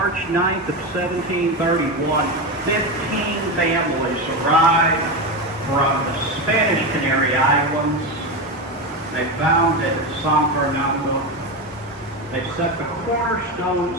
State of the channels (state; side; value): normal; both; correlation 0.16